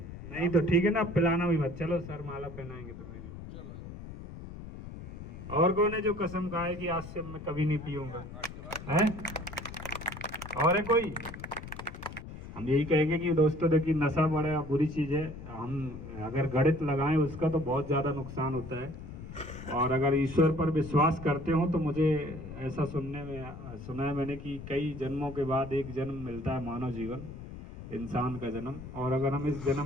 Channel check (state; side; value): noise; left; rumble, 12 dB below the sound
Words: नहीं तो ठीक है ना, पिलाना भी मत। चलो सर माला पहनाएंगे तुम्हें भी। और कौन है जो कसम खाए कि आज से मैं कभी नहीं पीऊंगा? है और है कोई? हम यही कहेंगे कि दोस्तों देखिए, नशा बड़ा बुरी चीज़ है। हम अगर गणित लगाएं उसका तो बहुत ज़्यादा नुकसान होता है। और अगर ईश्वर पर विश्वास करते हो तो मुझे ऐसा सुना है मैंने कि कई जन्मों के बाद एक जन्म मिलता है, मानव जीवन, इंसान का जन्म। और अगर हम इस